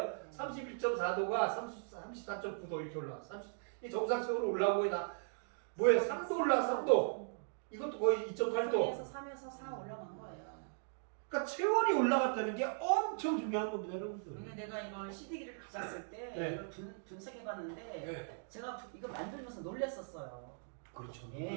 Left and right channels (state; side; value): silent; left; digital silence